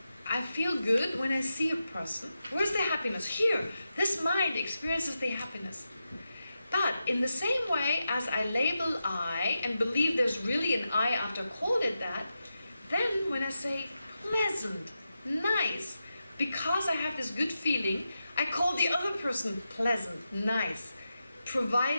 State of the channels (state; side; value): inverted; both; correlation -0.89